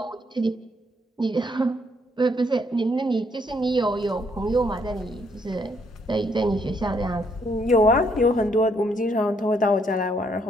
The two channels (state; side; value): normal; both; correlation 0.71